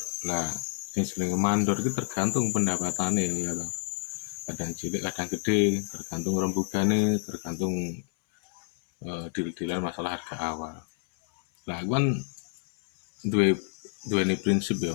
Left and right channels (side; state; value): right; silent; 59 dB below the other